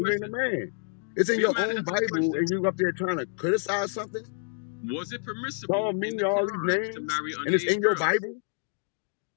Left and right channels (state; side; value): silent; right; 58 dB below the other